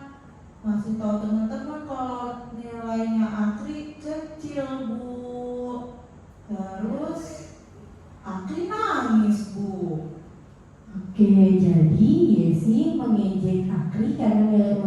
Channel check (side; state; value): both; identical; correlation 1.00